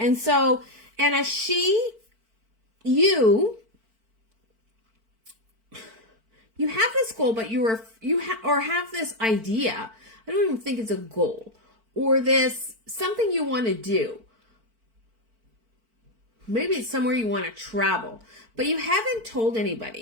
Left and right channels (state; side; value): late; left; 4.5 ms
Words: so, Anna, you have this goal, but have this idea. I don't even think it's a goal, or this something you want to do. Maybe it's somewhere you want to travel, but you haven't told